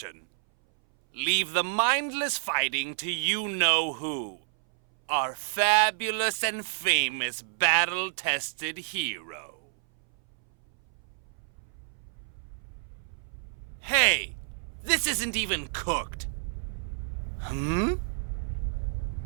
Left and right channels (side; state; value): left; silent; 58 dB below the other